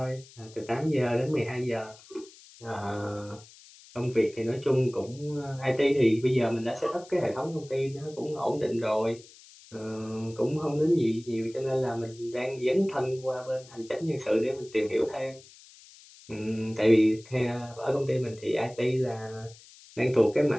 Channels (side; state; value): left; noise; hiss, 22 dB below the sound